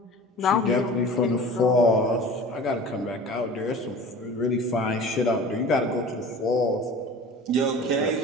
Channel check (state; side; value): normal; both; correlation 0.40